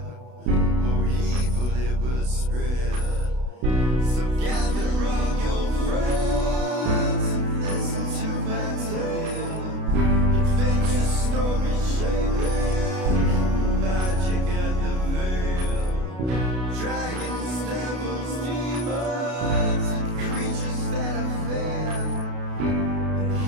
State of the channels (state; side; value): late; left; 32 ms